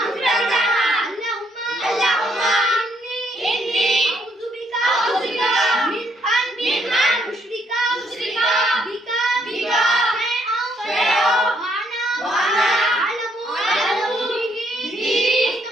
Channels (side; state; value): both; normal; correlation 0.71